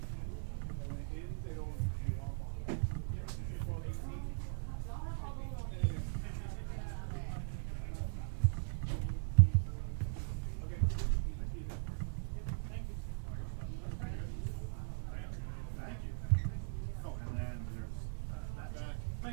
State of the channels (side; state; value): left; silent; digital silence